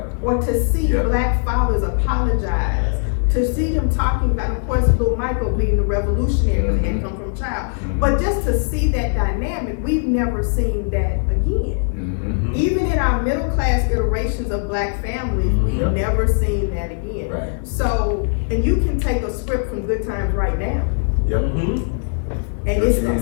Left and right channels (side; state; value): right; silent; 66 dB below the other